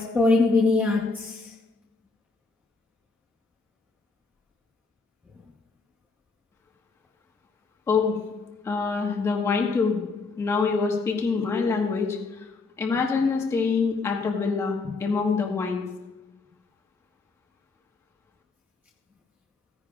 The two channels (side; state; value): right; quieter; 4.0 dB